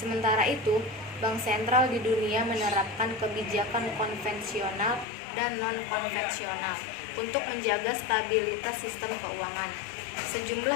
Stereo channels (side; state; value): right; drops out; at 5.1 s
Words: itu, bank sentral di dunia menerapkan kebijakan konvensional dan non-konvensional untuk menjaga stabilitas sistem keuangan.